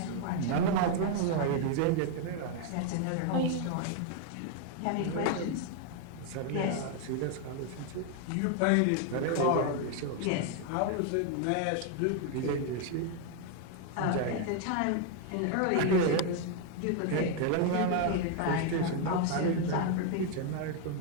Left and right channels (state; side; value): different; both; correlation 0.00